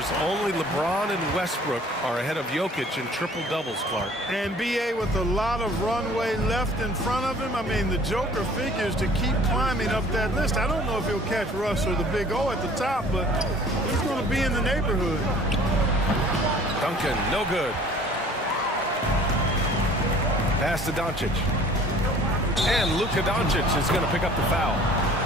only LeBron and Westbrook are ahead of Jokic in triple-doubles, Clark. And BA with a lot of runway left in front of him. I mean, the Joker figures to keep climbing up that list. I don't know if he'll catch Russ or the Big O at the top, but he's going to be in the neighborhood. Duncan, no good. Pass to Doncic. And Luka Doncic is going to pick up the foul.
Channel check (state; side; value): normal; both; correlation 0.51